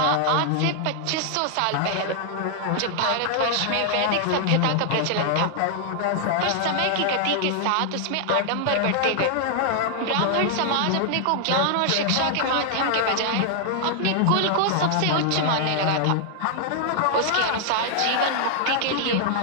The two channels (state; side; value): different; both; correlation 0.00